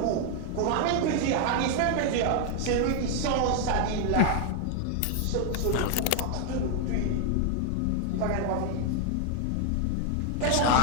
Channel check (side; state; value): both; different; correlation 0.00